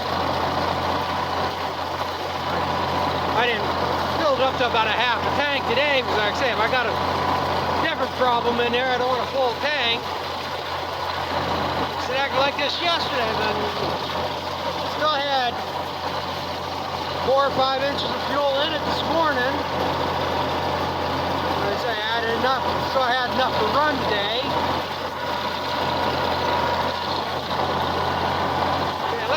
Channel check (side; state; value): both; identical; correlation 1.00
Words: I didn't fill it up to about a half a tank today because, like I say, if I got a different problem in there, I don't want a full tank. It acted like this yesterday, then still had 4 or 5 inches of fuel in it this morning. Like I say, I had enough, so I had enough to run today.